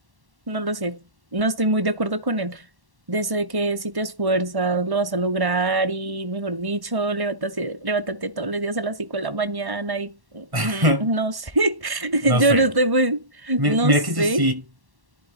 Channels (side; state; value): left; late; 1.1 ms